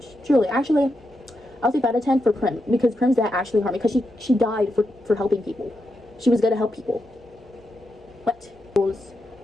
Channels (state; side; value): noise; right; hum, 29 dB below the sound